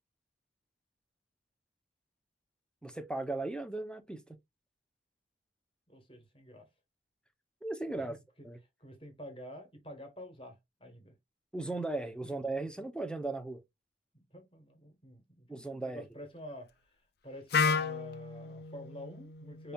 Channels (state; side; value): normal; both; correlation 0.47